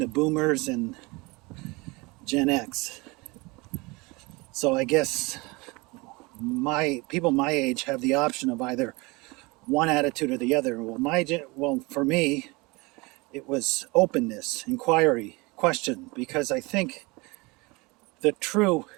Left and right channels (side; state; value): left; quieter; 25.1 dB